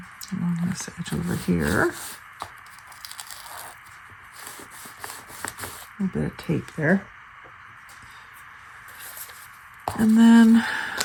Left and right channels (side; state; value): both; identical; correlation 1.00